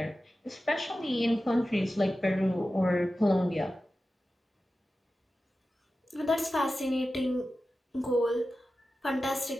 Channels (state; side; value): normal; both; correlation 0.94